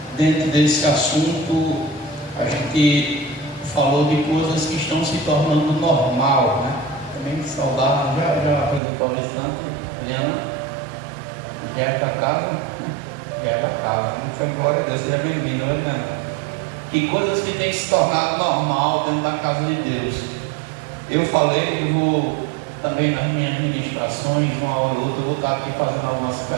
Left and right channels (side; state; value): left; drops out; at 8.8 s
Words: dentro desse assunto a gente falou de coisas que estão se tornando normal, né? Também saudável, já apresentou a visitante, Helena, já é da casa, não foi, glória a Deus, seja bem-vindo, Helena. Que coisas que têm se tornado normal dentro da casa de Deus. Eu falei, eu vou também nas minhas ministrações, uma hora ou outra, eu vou estar aqui fazendo algumas